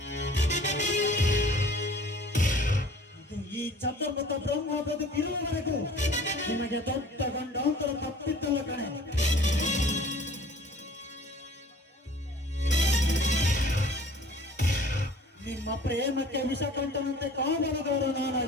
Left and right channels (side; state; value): both; normal; correlation 0.49